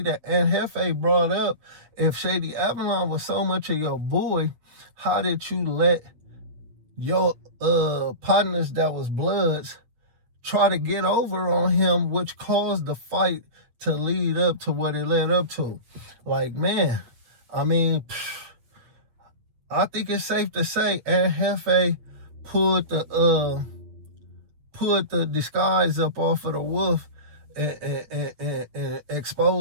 that Jefe brought up, if Shady Avalon was so much of your boy, how did you let your partners that was Bloods try to get over on him, which caused the fight to lead up to what it led up to? Like, man, I mean, I think it's safe to say Jefe pulled the disguise up off of the wolf and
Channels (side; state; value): left; late; 8.7 ms